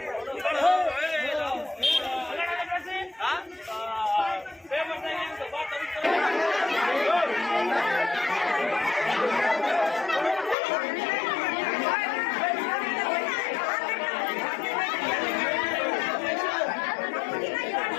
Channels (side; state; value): right; drops out; at 10.6 s